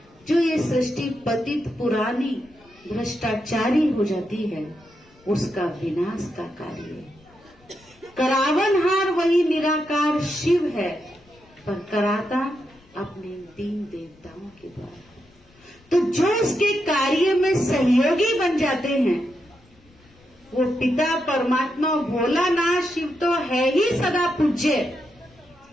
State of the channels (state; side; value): noise; left; rumble, 30 dB below the sound